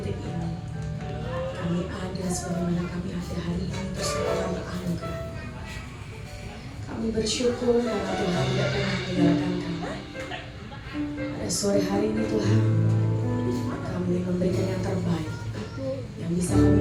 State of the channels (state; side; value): identical; both; correlation 1.00